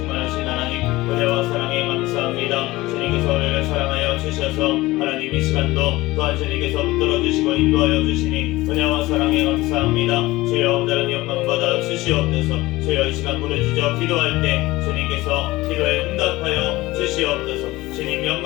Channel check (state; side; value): quieter; right; 19.2 dB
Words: 하나님, 은혜와 사랑에 감사합니다. 주님께서 우리를 사랑하여 주셔서 하나님 이 시간도 또한 주님께서 붙들어 주시고 인도하여 주시니 은혜와 사랑에 감사합니다. 주여 온전한 영광 받아 주시옵소서. 주여 이 시간 부르짖어 기도할 때 주님께서 기도에 응답하여 주시옵소서. 주님